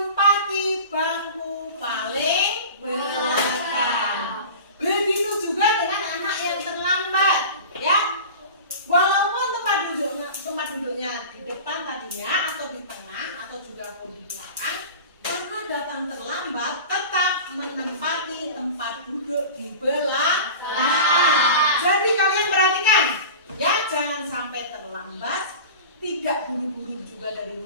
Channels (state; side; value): inverted; both; correlation -0.35